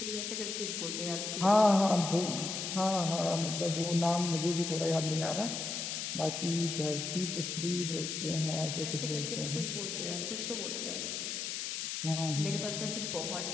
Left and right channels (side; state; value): left; noise; hiss, 3 dB below the sound